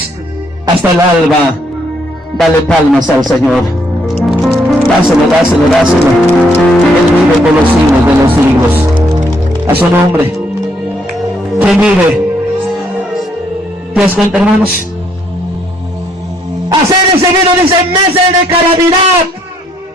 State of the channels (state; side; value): normal; both; correlation 0.70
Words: hasta el alba. Dale palmas al Señor. Dáselo, dáselo, dáselo. Él vive por los siglos de los siglos. A su nombre. ¿Quién vive? ¿Te das cuenta, hermanos? Hacer recibido, dice, meses de calamidad.